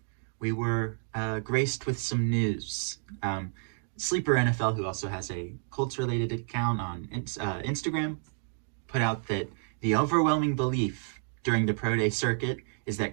we were graced with some news. Sleeper NFL, who also has a Colts-related account on Instagram, put out that the overwhelming belief during the pro day circuit is that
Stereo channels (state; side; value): silent; left; digital silence